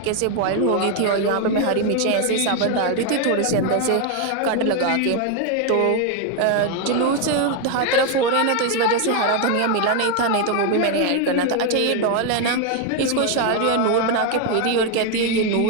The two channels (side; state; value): both; different; correlation 0.01